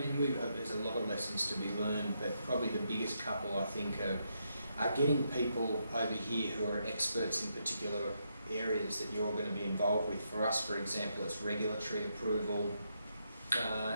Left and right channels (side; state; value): both; inverted; correlation -0.80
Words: there's a lot of lessons to be learned, but probably the biggest couple, I think, are getting people over here who are experts in particular areas that you're going to be involved with. For us, for example, it's regulatory approval